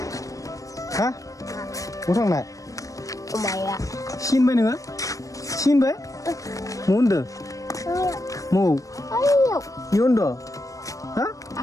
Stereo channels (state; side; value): late; right; 0.16 ms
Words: हा? बहा थांनाय? माया सिनबाय नोङो? सिनबाय? म होनदो? म ayo इ होनदो? हा?